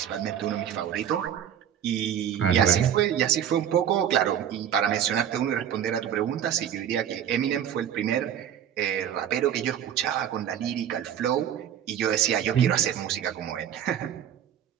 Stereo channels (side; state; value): left; quieter; 9.6 dB